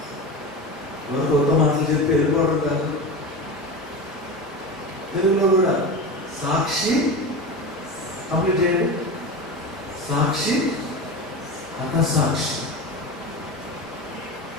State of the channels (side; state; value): both; normal; correlation 0.26